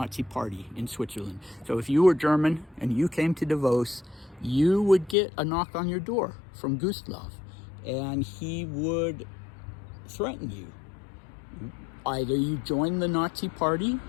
Party in Switzerland. So if you were German and you came to Davos, you would get a knock on your door from Gustloff, and he would threaten you. Either you join the Nazi Party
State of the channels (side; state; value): right; drops out; at 5.2 s